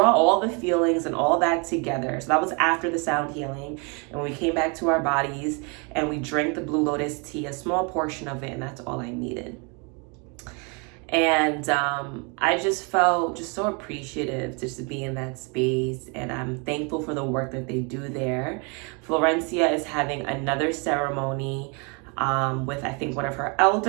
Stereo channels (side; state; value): left; quieter; 33.2 dB